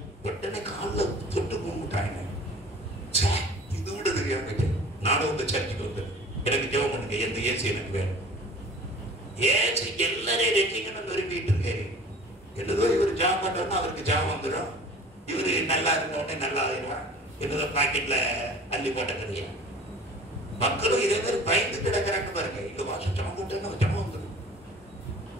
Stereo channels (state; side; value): normal; both; correlation 0.45